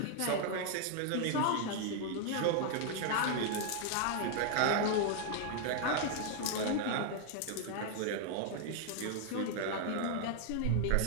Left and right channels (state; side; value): different; both; correlation 0.00